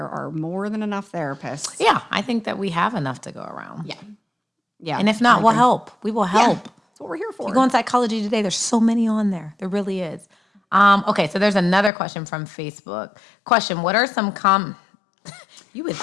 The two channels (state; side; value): drops out; right; at 11.9 s